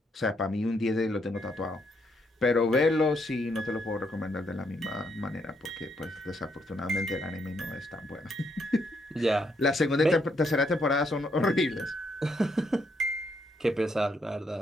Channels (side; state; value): both; normal; correlation 0.75